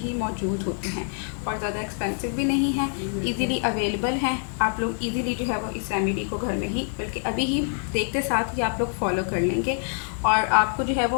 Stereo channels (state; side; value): silent; right; 61 dB below the other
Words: मौजूद होते हैं और ज़्यादा एक्सपेंसिव भी नहीं है, इजीली अवेलेबल हैं। आप लोग इजीली जो है वो इस रेमेडी को घर में ही, बल्कि अभी ही देखते साथ ही आप लोग फॉलो कर लेंगे और आपको जो है